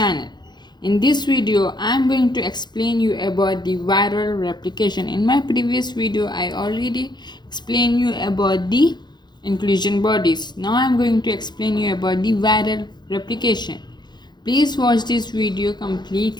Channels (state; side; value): late; right; 0.21 ms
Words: In this video, I am going to explain you about the viral replication. In my previous video, I already explained you about the inclusion bodies. Now I am going to explain you about the viral replication. Please watch this video